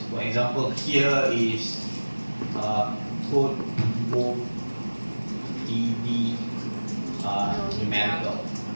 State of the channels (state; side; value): inverted; both; correlation -1.00